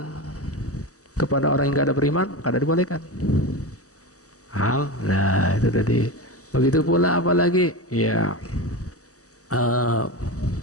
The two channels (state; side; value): late; right; 0.66 ms